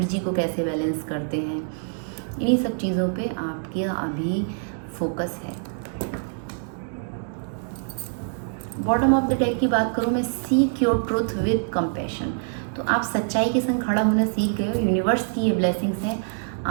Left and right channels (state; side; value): silent; left; digital silence